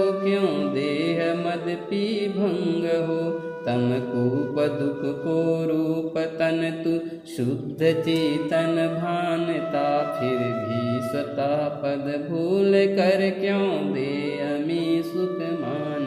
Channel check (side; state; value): both; identical; correlation 1.00